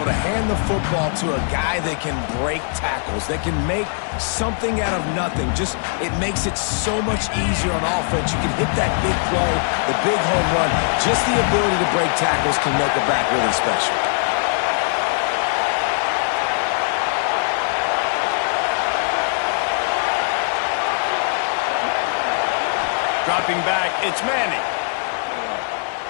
to hand the football to a guy that can break tackles, that can make something out of nothing. Just, it makes it so much easier on offense. You can hit that big play, the big home run. Just the ability to break tackles can make a back really special. Dropping back, it's Manning.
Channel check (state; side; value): silent; right; digital silence